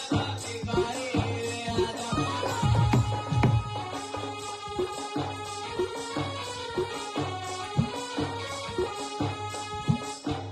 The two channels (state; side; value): identical; both; correlation 1.00